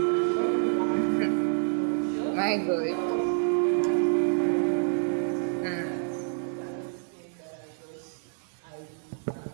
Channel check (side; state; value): left; silent; digital silence